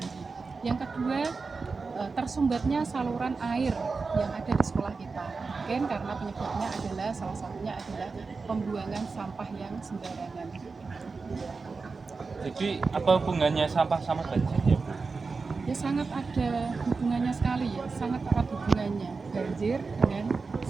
Yang kedua, tersumbatnya saluran air yang ada di sekolah kita. Mungkin karena penyebabnya adalah salah satunya adalah pembuangan sampah yang sembarangan. Jadi apa hubungannya sampah sama banjir ya Bu? Ya sangat ada hubungannya sekali ya, sangat erat hubungannya banjir dengan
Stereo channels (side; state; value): left; quieter; 4.4 dB